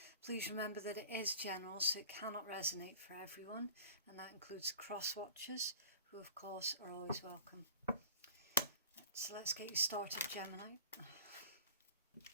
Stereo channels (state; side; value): inverted; both; correlation -0.41